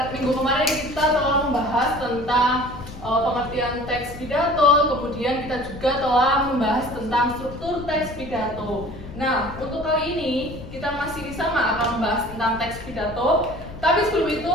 minggu kemarin kita telah membahas tentang pengertian teks pidato, kemudian kita juga telah membahas tentang struktur teks pidato. Nah, untuk kali ini kita masih sama akan membahas tentang teks pidato, tapi sebelum itu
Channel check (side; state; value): left; noise; rumble, 13 dB below the sound